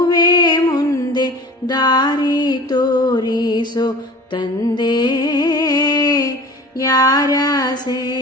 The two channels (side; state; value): both; normal; correlation 0.41